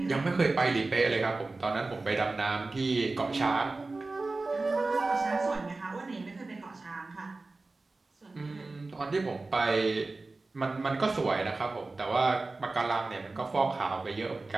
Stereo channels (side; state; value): left; quieter; 3.4 dB